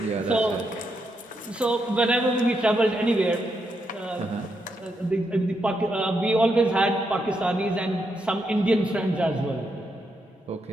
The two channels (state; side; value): normal; both; correlation 0.81